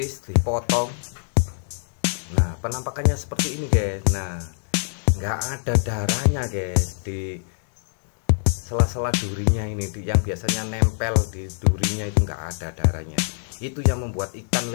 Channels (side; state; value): right; silent; digital silence